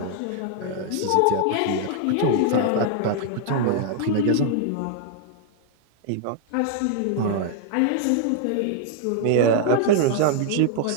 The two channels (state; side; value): different; both; correlation 0.00